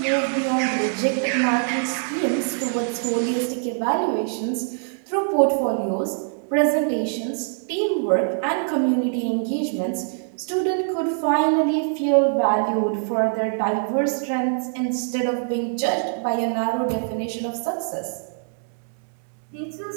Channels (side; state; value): left; silent; digital silence